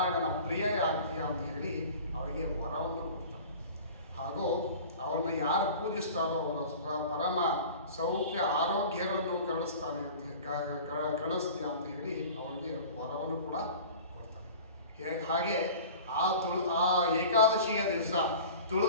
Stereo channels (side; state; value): both; inverted; correlation -0.40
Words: ಪ್ರಿಯ ಆಗ್ತೀಯ ಅಂತ ಹೇಳಿ ಅವರಿಗೆ ವರವನ್ನು ಕೊಡ್ತಾರೆ. ಹಾಗೂ ಅವರನ್ನು ಯಾರು ಪೂಜಿಸ್ತಾರೋ ಅವರ ಪರಮ ಸೌಖ್ಯ ಆರೋಗ್ಯಗಳನ್ನು ಕರುಣಿಸ್ತಾನೆ ಅಂತ ಕರುಣಿಸ್ತೀಯ ಅಂತ ಹೇಳಿ ಅವರಿಗೆ ವರವನ್ನು ಕೂಡ ಕೊಡ್ತಾರೆ. ಹಾಗೆ ಆ ಏಕಾದಶಿಯ ದಿವಸ